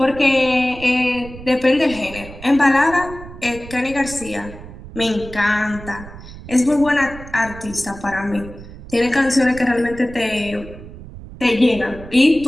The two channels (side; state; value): right; noise; rumble, 15 dB below the sound